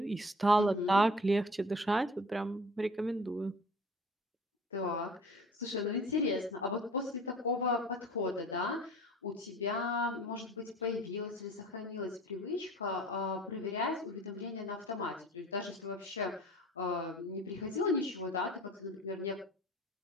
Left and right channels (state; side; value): normal; both; correlation 0.45